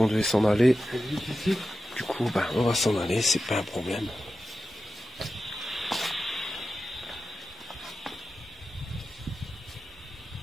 devait s'en aller. Ici. Du coup, ben, on va s'en aller, c'est pas un problème.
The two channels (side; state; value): both; normal; correlation 0.92